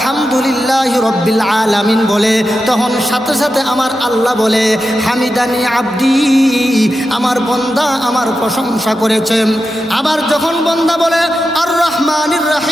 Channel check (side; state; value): both; normal; correlation 0.90